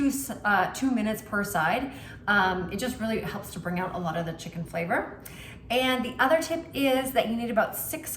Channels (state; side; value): identical; both; correlation 1.00